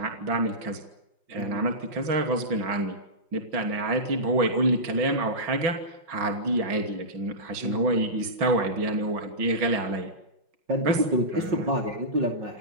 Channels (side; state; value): left; late; 5.5 ms